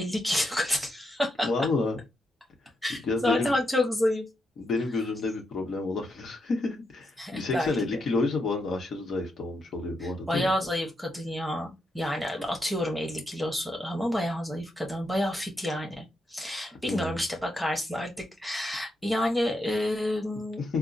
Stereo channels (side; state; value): both; normal; correlation 0.82